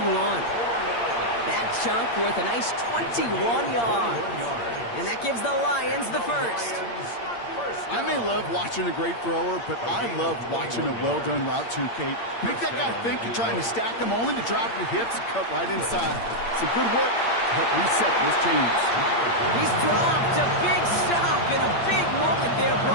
That chunk worth a nice 21 yards. And that gives the Lions the first. I may love watching a great thrower, but I love watching a well-done route too, Kate. Make that guy think you're trying to stack him only to drop your hips and cut right inside. Some good work to help reset those chains. He's dropped a big stop in a big moment there,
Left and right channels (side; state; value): right; late; 8.6 ms